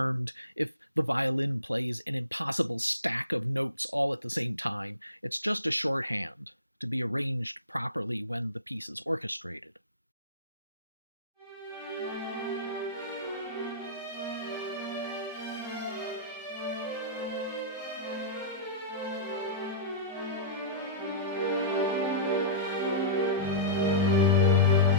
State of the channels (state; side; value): inverted; both; correlation -0.33